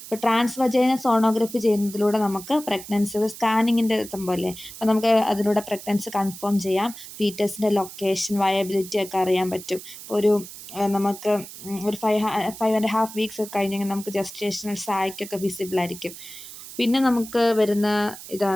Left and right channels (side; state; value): right; noise; hiss, 14 dB below the sound